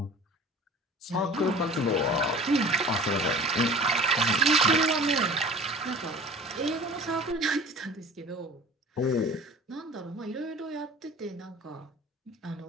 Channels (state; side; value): normal; both; correlation 0.42